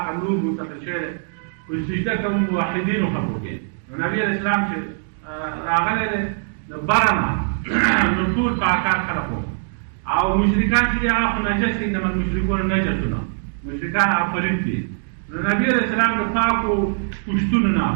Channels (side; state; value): left; silent; digital silence